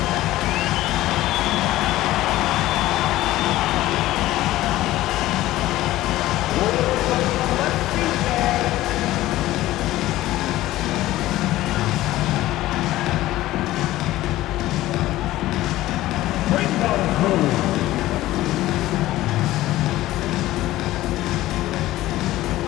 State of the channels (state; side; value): quieter; right; 16.0 dB